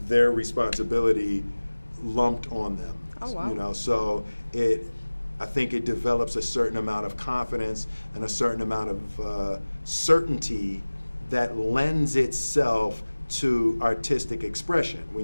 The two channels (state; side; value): inverted; both; correlation -1.00